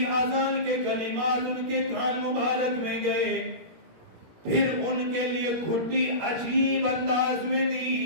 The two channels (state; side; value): late; left; 17 ms